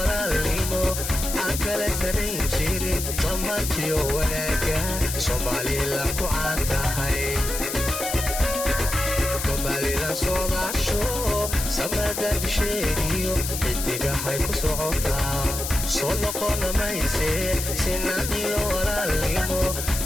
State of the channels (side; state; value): left; noise; hiss, 5 dB below the sound